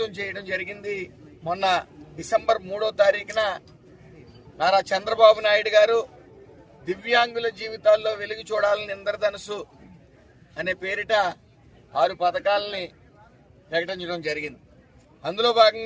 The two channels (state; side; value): identical; both; correlation 1.00